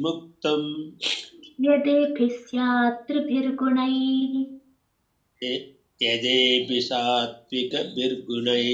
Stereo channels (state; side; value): identical; both; correlation 1.00